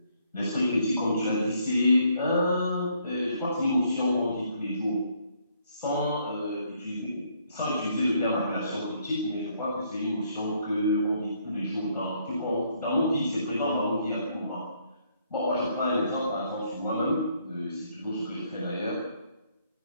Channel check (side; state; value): both; inverted; correlation -0.69